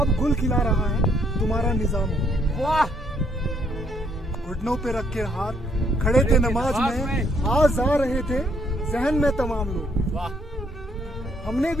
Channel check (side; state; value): both; normal; correlation 0.70